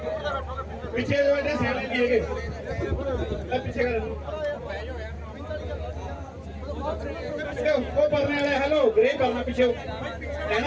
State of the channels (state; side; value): identical; both; correlation 1.00